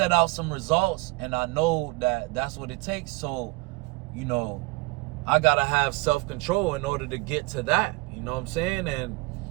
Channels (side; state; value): left; quieter; 25.3 dB